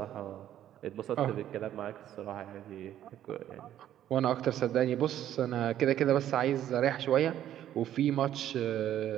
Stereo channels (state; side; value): quieter; left; 11.5 dB